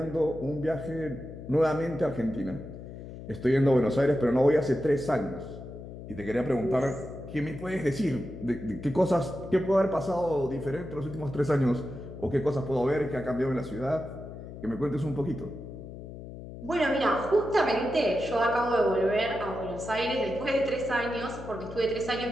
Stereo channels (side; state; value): left; noise; hum, 12 dB below the sound